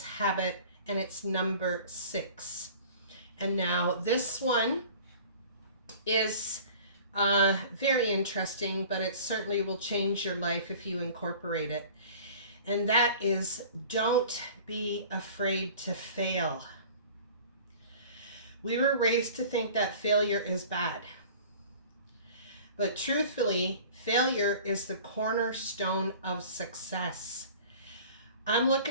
habit, and it's number 6. And now this one is very interesting, but it certainly will change your life if you incorporate it. And that is, don't be afraid to fail. We were raised to think that failure is bad. But truthfully, failure is the cornerstone of success. I'm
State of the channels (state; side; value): inverted; both; correlation -0.44